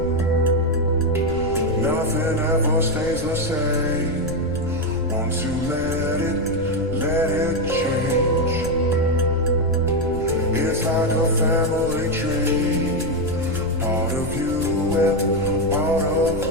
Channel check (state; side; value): noise; left; rumble, 10 dB below the sound